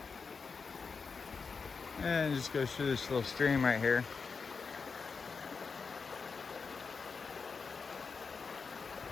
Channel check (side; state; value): right; quieter; 5.1 dB